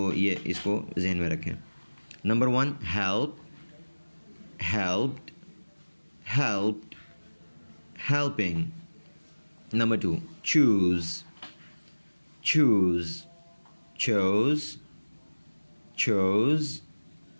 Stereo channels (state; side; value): inverted; both; correlation -1.00